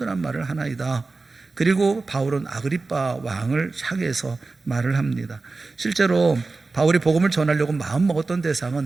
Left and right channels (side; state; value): left; quieter; 3.7 dB